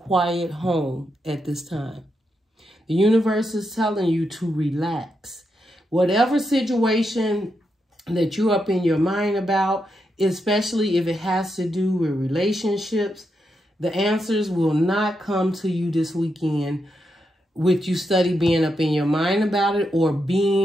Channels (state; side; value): normal; both; correlation 0.84